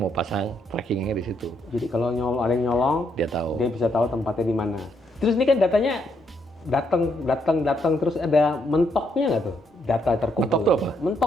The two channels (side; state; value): both; normal; correlation 0.75